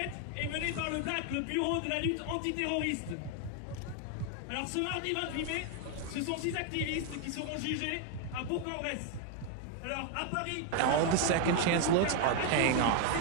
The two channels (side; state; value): both; different; correlation 0.01